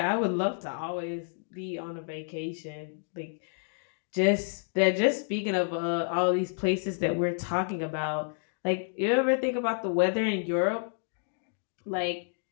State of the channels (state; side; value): silent; right; digital silence